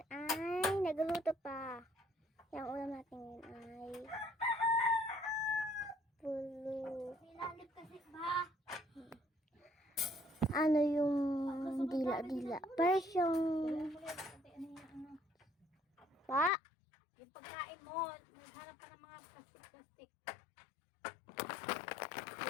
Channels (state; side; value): drops out; right; at 16.5 s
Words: ay nagluluto pa. Kaya ang ulam natin ngayon ay pulo. Nilalim kasi ba? Ano yung dila-dila? Parang pa. Yung pagkain mo, naghanap ka ng mga plastic-plastic.